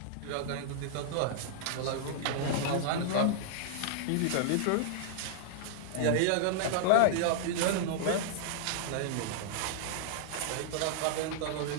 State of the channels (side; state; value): both; different; correlation -0.01